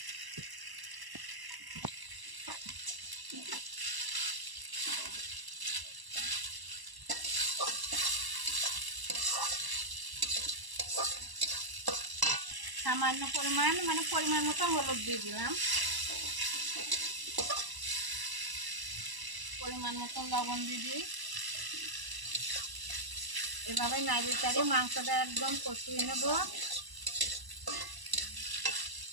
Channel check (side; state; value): left; late; 1.0 ms